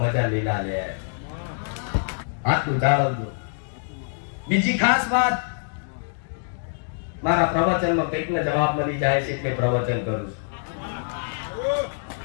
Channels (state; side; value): silent; right; digital silence